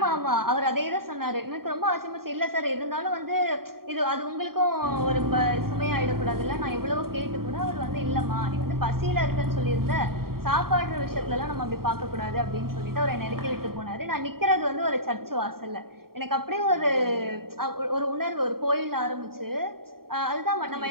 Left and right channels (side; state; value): left; late; 0.93 ms